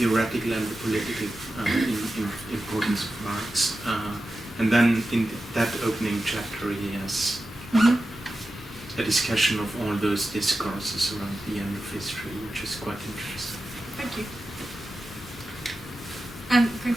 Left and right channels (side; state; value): both; normal; correlation 0.92